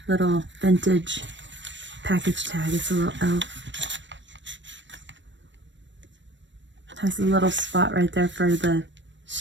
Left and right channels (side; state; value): left; late; 0.53 ms